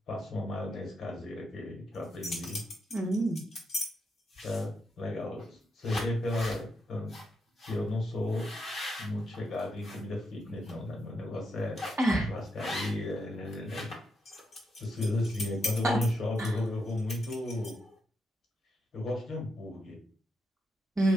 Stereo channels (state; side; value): normal; both; correlation 0.82